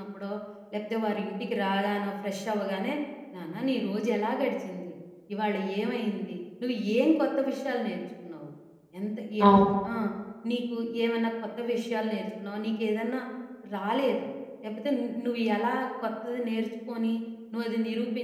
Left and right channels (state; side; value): identical; both; correlation 1.00